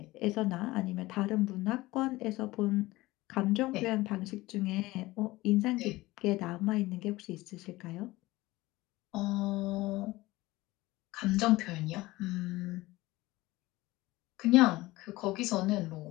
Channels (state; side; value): quieter; right; 19.3 dB